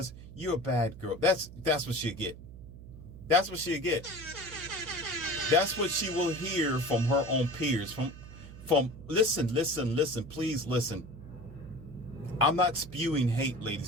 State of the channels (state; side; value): noise; right; hum, 15 dB below the sound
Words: you're a bad girl. That's what she'll get. That's what she'll get. That's what she will hear from her own peers, from listen, please listen. I'm not spewing hate,